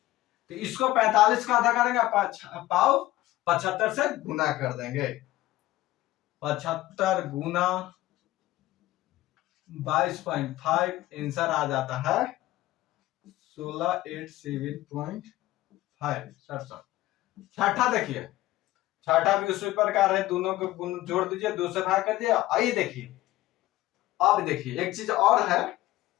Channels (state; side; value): quieter; right; 16.6 dB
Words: तो इसको 45 का आधा करेंगे, पाव 75 से गुना कर देंगे। 75 गुना 22.5, आंसर आ जाता है 16,807.5। छठा देखिए, छठा भी उसी प्रकार है, दोनों को जोड़ दीजिए, 2 से भाग कर दिया। आइए देखिए, अब देखिए एक चीज और है,